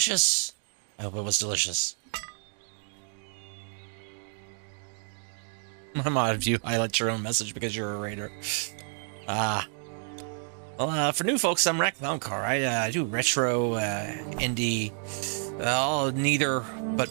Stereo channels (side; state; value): left; silent; 58 dB below the other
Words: I hope it was delicious. I'm odd of you highlight your own message because you're a raider. Well, for new folks, I'm Rack Louncar. I do retro, indie, neither, but